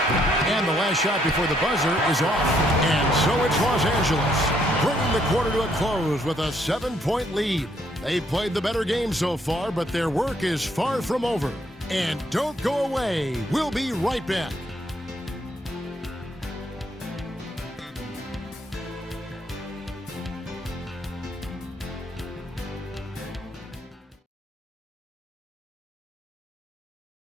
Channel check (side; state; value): both; normal; correlation 0.70